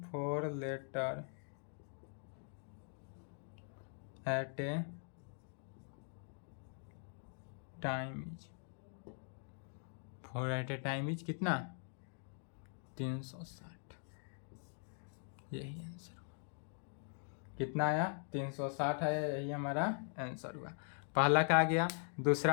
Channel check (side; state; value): right; silent; 50 dB below the other